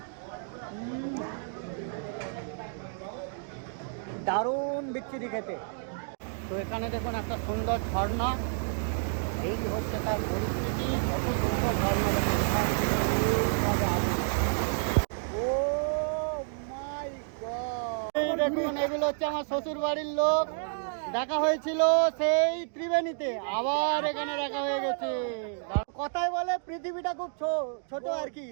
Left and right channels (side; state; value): left; silent; digital silence